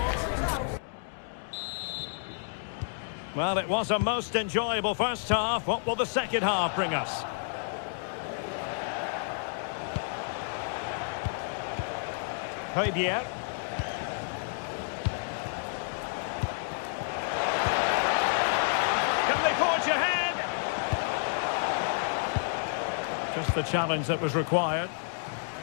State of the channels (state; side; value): silent; right; digital silence